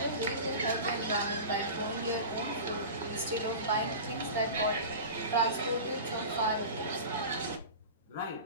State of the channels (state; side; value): inverted; both; correlation -0.32